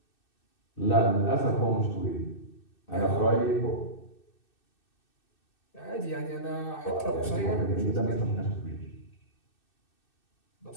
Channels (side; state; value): right; late; 2.6 ms